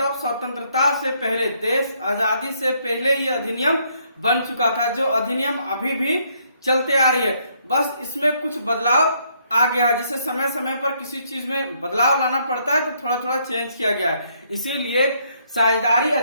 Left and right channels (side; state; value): both; inverted; correlation -0.70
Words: स्वतंत्रता से पहले, देश आजादी से पहले ये अधिनियम बन चुका था, जो अधिनियम अभी भी चलते आ रही है। बस इसमें कुछ बदलाव आ गया है, जैसे समय समय पर किसी चीज में बदलाव लाना पड़ता है तो थोड़ा थोड़ा चेंज किया गया है। इसीलिए साझेदारी